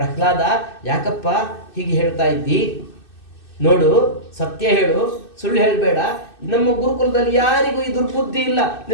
ಯಾಕಪ್ಪ ಹೀಗೆ ಹೇಳ್ತಾ ಇದ್ದಿ? ನೋಡು, ಸತ್ಯ ಹೇಳು, ಸುಳ್ಳು ಹೇಳಬೇಡ. ನಮ್ಮ ಗುರುಕುಲದಲ್ಲಿ ಯಾರಿಗೂ ಈ ದುರ್ಬುದ್ಧಿ ಇಲ್ಲ,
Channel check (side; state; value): right; late; 2.6 ms